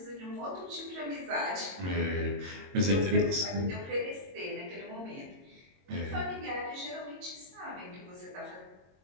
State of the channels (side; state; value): left; late; 22 ms